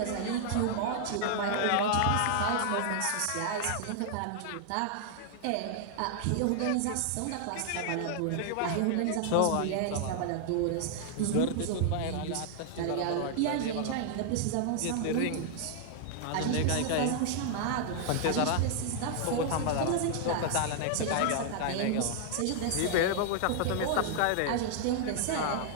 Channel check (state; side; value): different; both; correlation 0.00